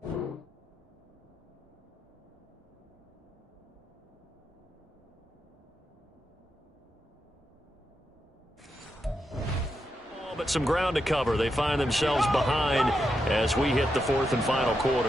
But some ground to cover. They find themselves behind as we hit the 4th and final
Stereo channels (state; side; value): normal; both; correlation 0.85